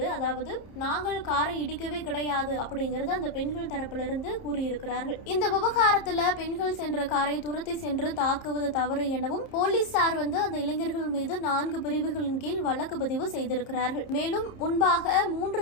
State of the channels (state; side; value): late; right; 30 ms